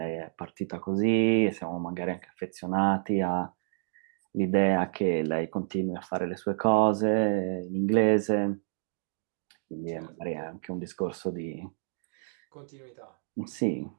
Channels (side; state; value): left; silent; digital silence